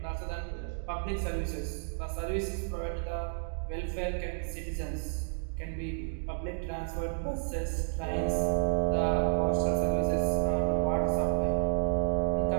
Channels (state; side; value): silent; left; digital silence